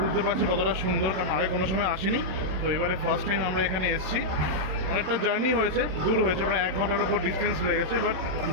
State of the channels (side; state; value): left; late; 27 ms